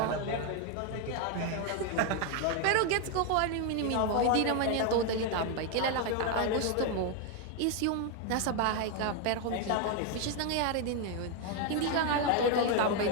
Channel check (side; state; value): both; different; correlation 0.01